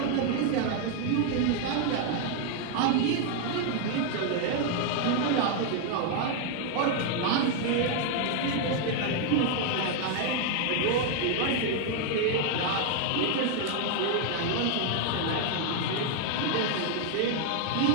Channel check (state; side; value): different; both; correlation 0.00